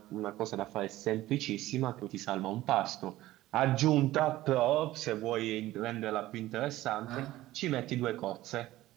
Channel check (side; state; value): left; quieter; 16.0 dB